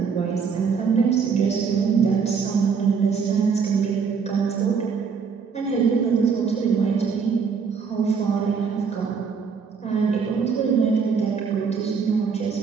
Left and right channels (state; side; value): quieter; left; 5.9 dB